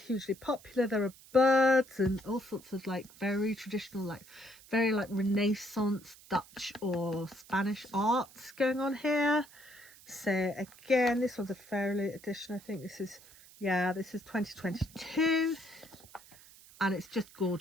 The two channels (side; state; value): right; noise; hiss, 22 dB below the sound